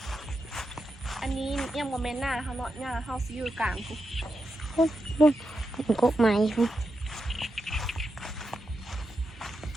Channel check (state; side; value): normal; both; correlation 0.87